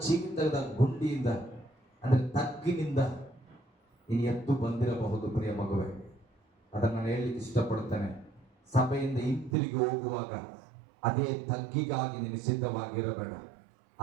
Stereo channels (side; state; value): left; drops out; at 9.6 s